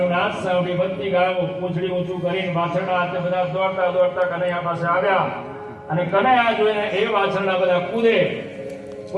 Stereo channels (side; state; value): both; identical; correlation 1.00